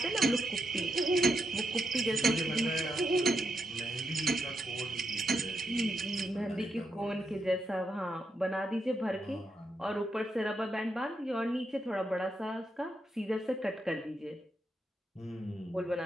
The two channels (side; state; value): both; normal; correlation 0.82